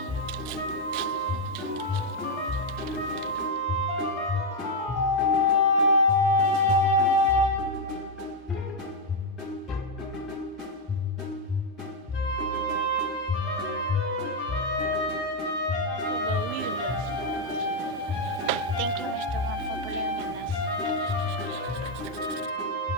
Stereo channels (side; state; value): both; normal; correlation 0.01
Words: Thank you, Mr. Juan, for believing in us.